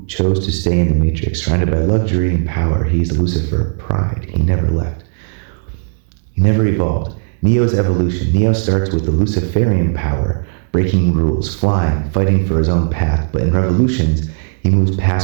chose to stay in the Matrix, surrounded by luxury and power. He is Lucifer, pride. He never left. He never evolved. Neo's evolution. Neo starts with the Luciferian power, breaking rules, flying, fighting for his own path. But in revolutions, he moves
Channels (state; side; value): silent; left; digital silence